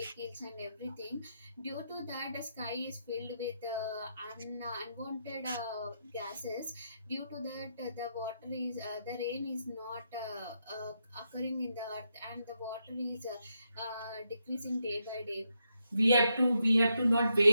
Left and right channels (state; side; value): inverted; both; correlation -0.82